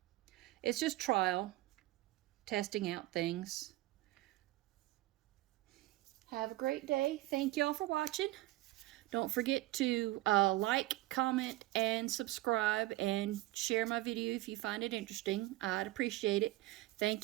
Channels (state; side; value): quieter; left; 18.1 dB